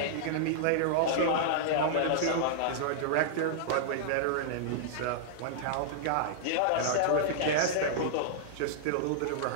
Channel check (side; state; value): both; different; correlation -0.02